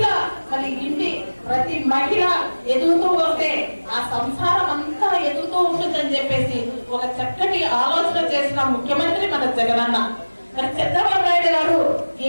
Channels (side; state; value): both; inverted; correlation -1.00